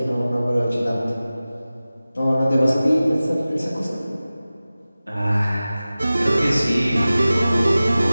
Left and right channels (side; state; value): both; inverted; correlation -0.96